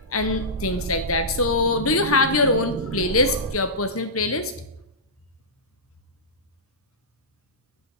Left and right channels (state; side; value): normal; both; correlation -0.17